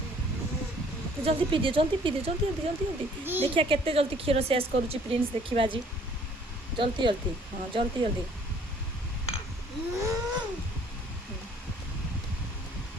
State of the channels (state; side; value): normal; both; correlation 0.59